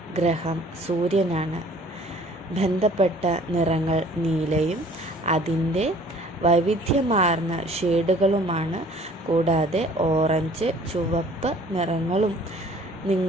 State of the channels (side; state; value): both; normal; correlation 0.53